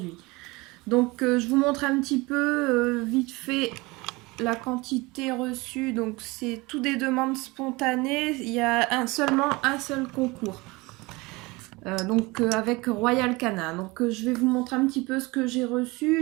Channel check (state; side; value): quieter; left; 23.6 dB